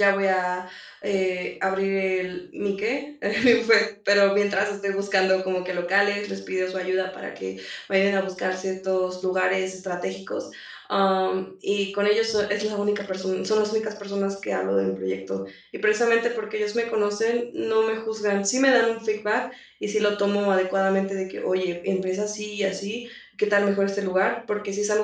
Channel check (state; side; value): identical; both; correlation 1.00